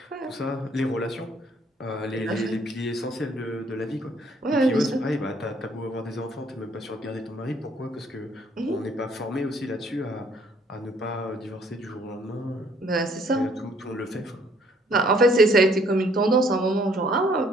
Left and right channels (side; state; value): both; normal; correlation 0.63